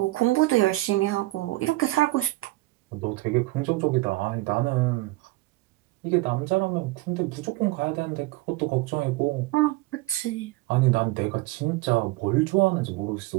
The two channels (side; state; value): left; quieter; 19.6 dB